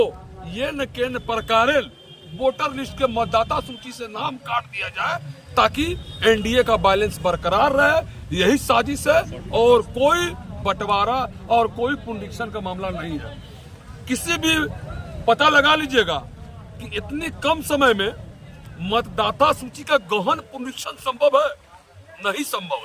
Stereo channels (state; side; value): identical; both; correlation 1.00